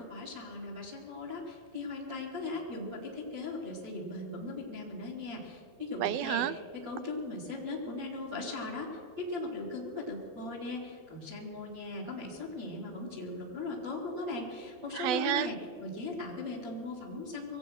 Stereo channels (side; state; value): left; late; 12 ms